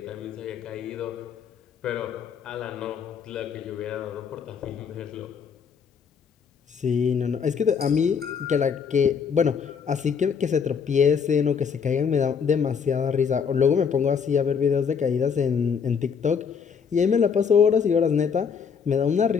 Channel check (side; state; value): right; quieter; 6.5 dB